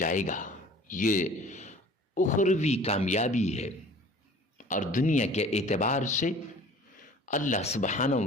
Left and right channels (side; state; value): both; normal; correlation 0.47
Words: گا۔ یہ اخروی کامیابی ہے، اور دنیا کے اعتبار سے اللہ سبحانہ